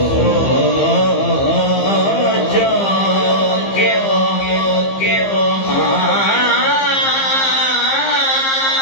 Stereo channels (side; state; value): right; late; 15 ms